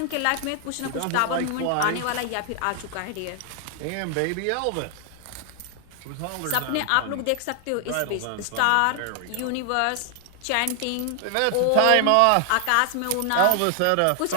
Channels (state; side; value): different; both; correlation 0.00